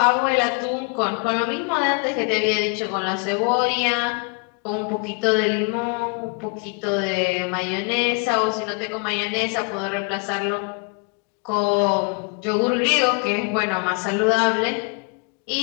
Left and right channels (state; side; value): quieter; right; 34.9 dB